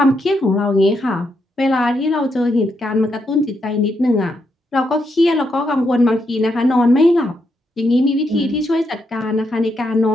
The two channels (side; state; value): both; normal; correlation 0.80